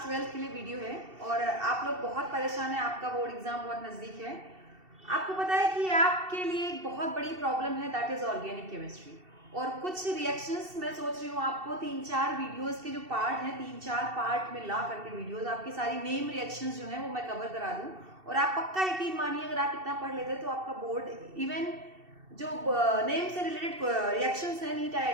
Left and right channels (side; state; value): left; late; 2.7 ms